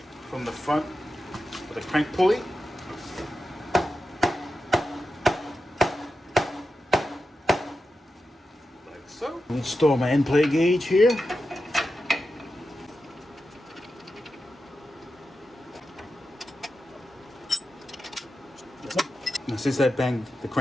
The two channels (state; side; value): normal; both; correlation 0.90